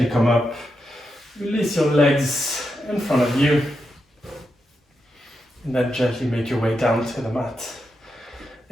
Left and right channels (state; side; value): normal; both; correlation 0.86